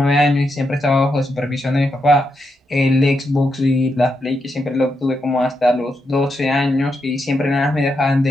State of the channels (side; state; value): both; normal; correlation 0.83